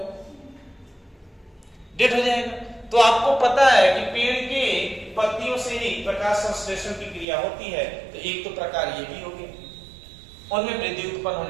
डेड हो जाएगा। तो आपको पता है कि पेड़ के पत्तियों से ही प्रकाश संश्लेषण की क्रिया होती है। तो एक तो प्रकार ये भी होगी, उनमें वृद्धि उत्पन्न हो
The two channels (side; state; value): left; drops out; at 7.2 s